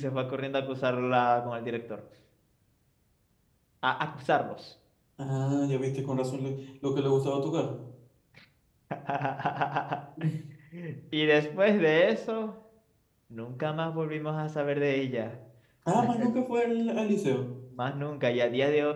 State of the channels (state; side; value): identical; both; correlation 1.00